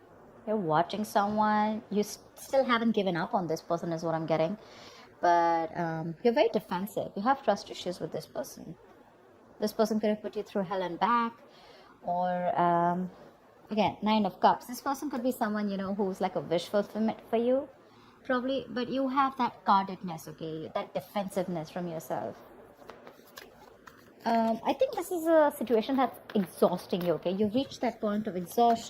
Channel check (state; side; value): identical; both; correlation 1.00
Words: You're watching someone. You still haven't given up on this person is what I'm getting. But you're very defensive. You have trust issues with this person. This person could have put you through hell and back. Or, again, Nine of Cups. This person could be someone, who's like a wish fulfillment for you. Probably. But you have that guardedness, okay? That defensiveness from yourself. I think this is a situation that's exhausting you, okay? You've reached that point of